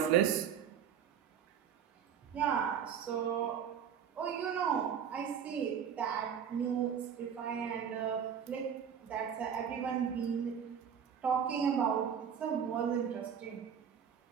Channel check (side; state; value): left; quieter; 8.0 dB